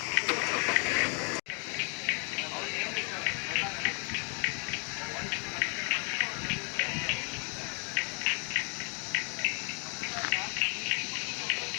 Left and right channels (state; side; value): quieter; right; 37.5 dB